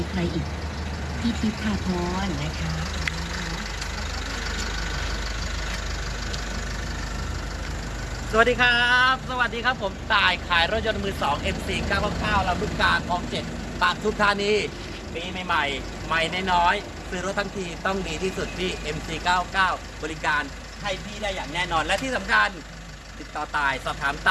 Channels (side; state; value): both; identical; correlation 1.00